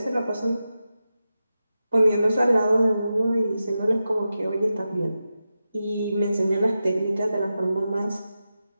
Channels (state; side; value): inverted; both; correlation -0.91